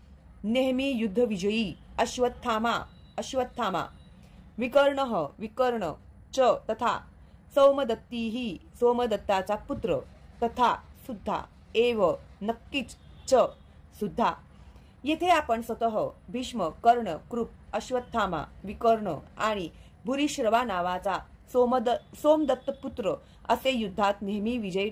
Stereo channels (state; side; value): identical; both; correlation 1.00